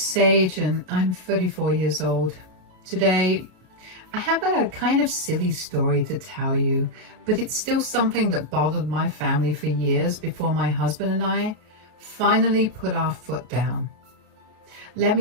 and I'm 34 years old. Today, I have a kind of silly story to tell you, but it's still something that bothered my family for years before my husband and I finally put our foot down. Let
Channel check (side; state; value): left; late; 33 ms